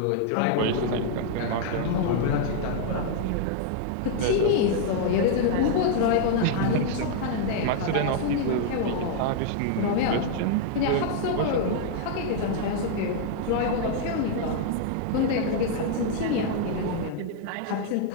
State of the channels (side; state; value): both; different; correlation 0.00